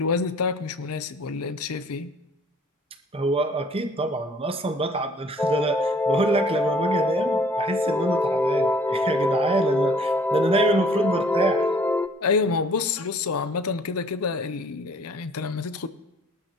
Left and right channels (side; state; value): both; normal; correlation 0.56